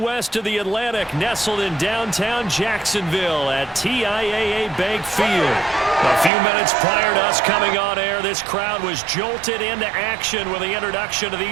of the Atlantic, nestled in downtown Jacksonville at TIAA Bank Field. A few minutes prior to us coming on air, this crowd was jolted into action with the introduction of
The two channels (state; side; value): drops out; left; at 6.3 s